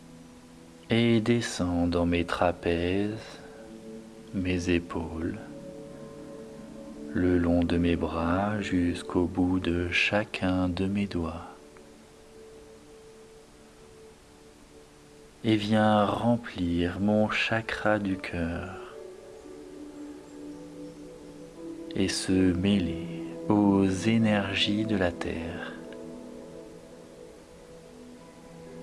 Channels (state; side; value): identical; both; correlation 1.00